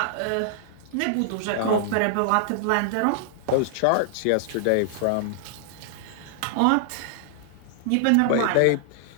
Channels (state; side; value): different; both; correlation -0.01